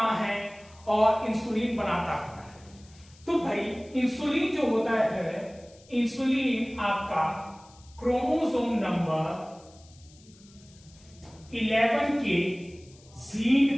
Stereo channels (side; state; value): left; noise; hiss, 26 dB below the sound